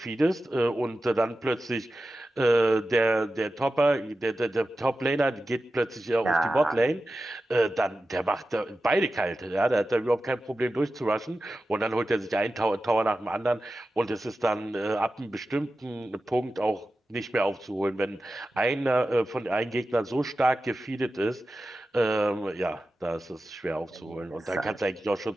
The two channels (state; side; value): normal; both; correlation 0.93